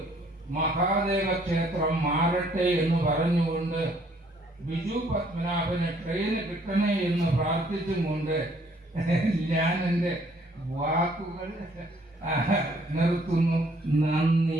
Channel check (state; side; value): normal; both; correlation 0.63